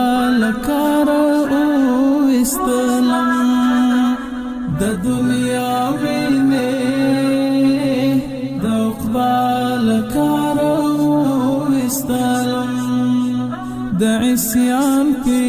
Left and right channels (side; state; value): both; identical; correlation 1.00